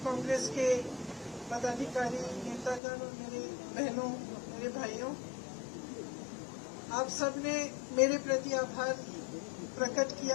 कांग्रेस के पदाधिकारी, नेतागण और मेरे बहनों, मेरे भाइयों, आप सबने मेरे प्रति आभार प्रकट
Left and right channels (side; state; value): right; drops out; at 2.8 s